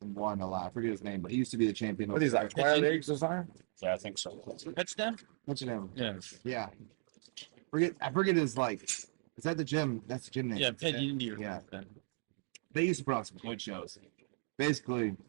and won a lot. I forget his name, but he used to be the champion. What is that? Twilight Leagues or something? Yeah, I think so. Touchdown? What's his name? Yeah. Yeah. I forget his like. Is that the gym? That's the gym name. Yeah, Pet Indy. Yeah. They used to put on some good shows. Basically,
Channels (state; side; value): silent; left; 53 dB below the other